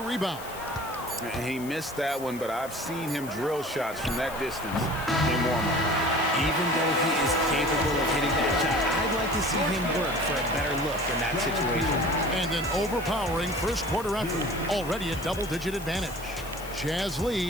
rebound. He missed that one, but I've seen him drill shots from that distance in warm-up. Even though he is capable of hitting that shot, I'd like to see him work for a better look in that situation. And an overpowering first quarter effort. Already a double-digit advantage. Jazz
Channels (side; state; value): left; noise; hiss, 16 dB below the sound